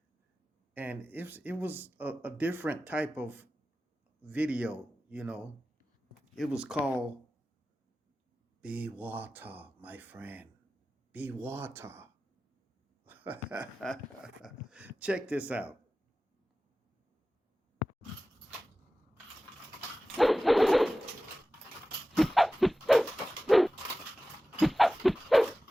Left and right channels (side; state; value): both; normal; correlation 0.96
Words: And it was a different type of video. It was called Be Water, my friend. Be water. Check this out.